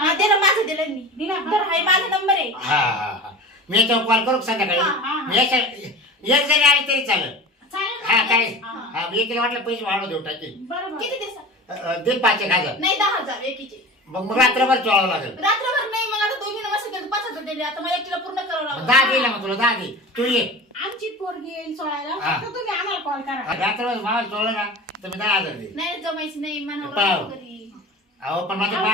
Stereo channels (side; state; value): both; normal; correlation 0.34